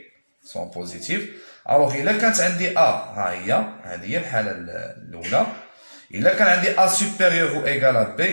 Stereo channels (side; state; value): both; inverted; correlation -1.00